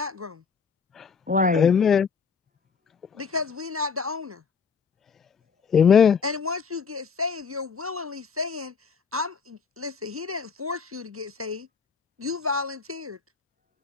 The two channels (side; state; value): right; quieter; 5.8 dB